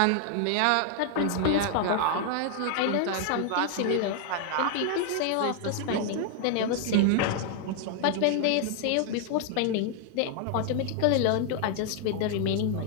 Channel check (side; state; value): both; different; correlation 0.00